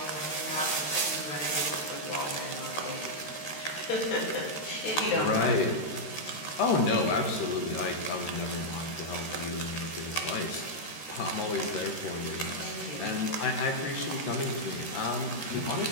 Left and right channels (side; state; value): right; late; 13 ms